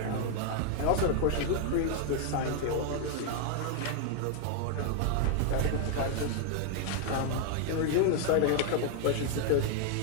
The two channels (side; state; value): both; different; correlation 0.00